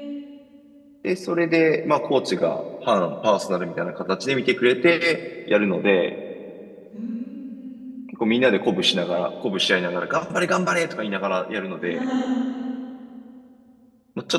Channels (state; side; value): identical; both; correlation 1.00